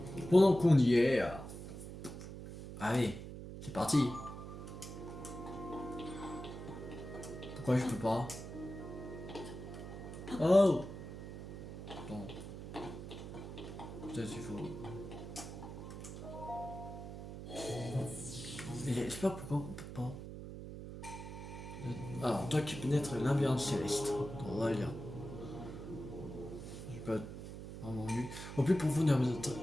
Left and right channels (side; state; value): right; noise; hum, 10 dB below the sound